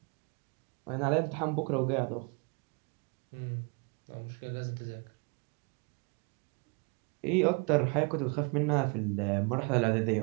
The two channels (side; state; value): left; quieter; 34.0 dB